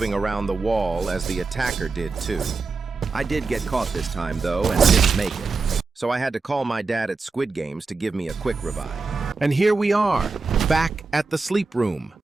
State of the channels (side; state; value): left; quieter; 4.2 dB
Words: around the wall as the attacker did too. I did get caught this time though and didn't make it. So I had to call my dad at Squid Games to give me a quick revive. And here we are, back at the sleep room.